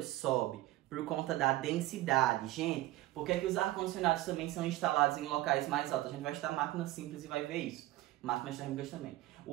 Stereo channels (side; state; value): left; quieter; 16.7 dB